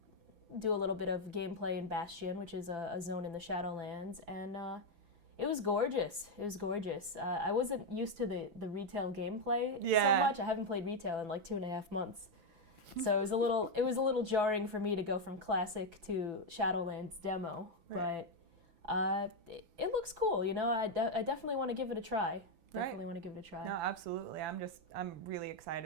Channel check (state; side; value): late; left; 6.0 ms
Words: do a little bit of gameplay in Bastion, which is a zone in the Shadowlands, and It was gorgeous. It was gorgeous. I wasn't used to the retail gameplay so much. I haven't played retail in like 2.5 months. So it was a little jarring for me to go from classic to Shadowlands demo, Right. but it looks cool. You know, I definitely want to give it a try. Definitely Right. want to give it a try. No, absolutely. I'm really